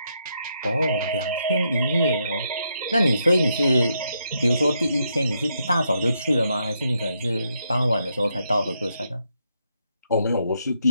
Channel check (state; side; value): inverted; both; correlation -0.79